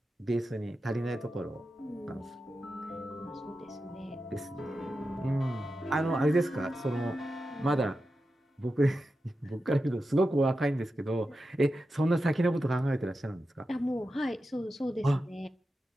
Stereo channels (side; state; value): both; normal; correlation 0.90